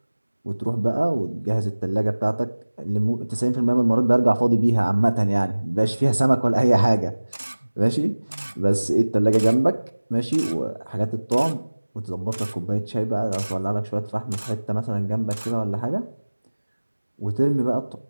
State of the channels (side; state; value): both; inverted; correlation -1.00